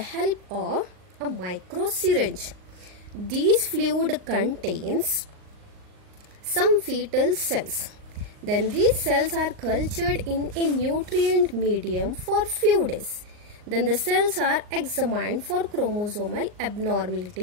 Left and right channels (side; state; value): left; late; 39 ms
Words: of a micro syringe. This fluid contains some fetal cells. Then these cells are cultured in a nutrient medium for few days. Then the cells are examined for chromosomal